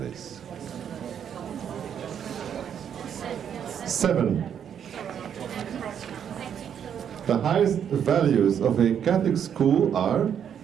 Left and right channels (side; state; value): left; quieter; 8.6 dB